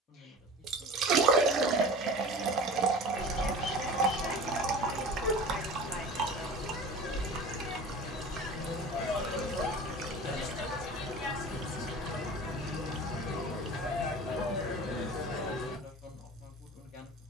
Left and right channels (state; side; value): normal; both; correlation 0.38